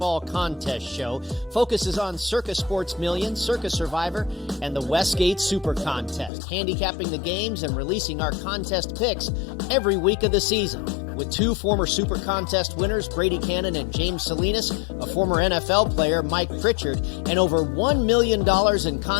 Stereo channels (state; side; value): drops out; right; at 6.3 s